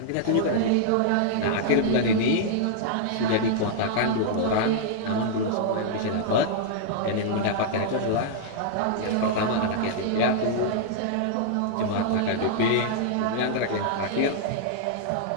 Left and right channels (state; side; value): different; both; correlation -0.01